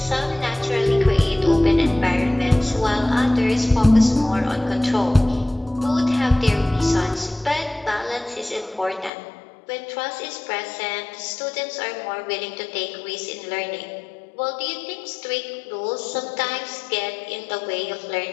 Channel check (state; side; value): drops out; right; at 9.1 s